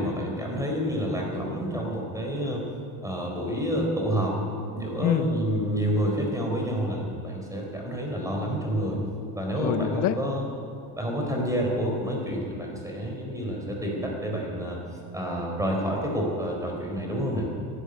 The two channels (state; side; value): normal; both; correlation 0.38